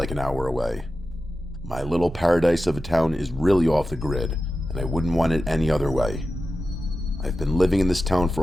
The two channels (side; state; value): both; normal; correlation 0.92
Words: an hour away. My little paradise of a town is really off the grid, and I wouldn't want it any other way. I've been living in this town